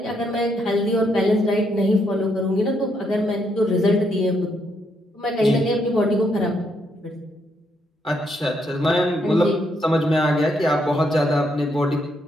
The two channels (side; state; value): both; normal; correlation 0.76